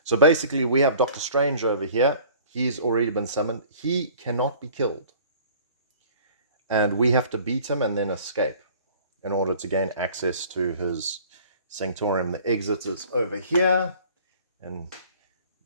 So basically, we have Doctor Strange over here. He's already been summoned. He cannot be killed. And we have to beat him and then escape in order to gain access to his sanctorium. The exit is over here in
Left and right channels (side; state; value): both; inverted; correlation -0.50